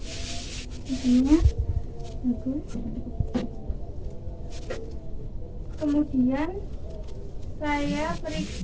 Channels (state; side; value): identical; both; correlation 1.00